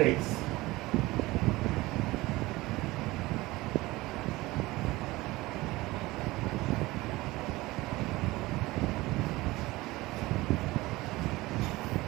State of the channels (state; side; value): quieter; left; 19.8 dB